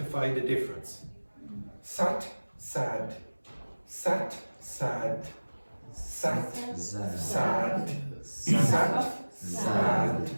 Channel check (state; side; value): inverted; both; correlation -1.00